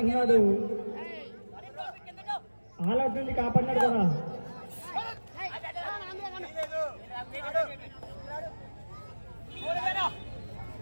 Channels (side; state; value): both; inverted; correlation -1.00